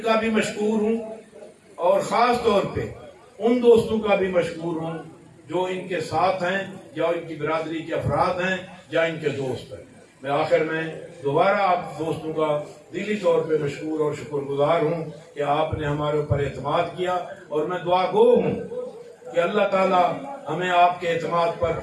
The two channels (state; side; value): identical; both; correlation 1.00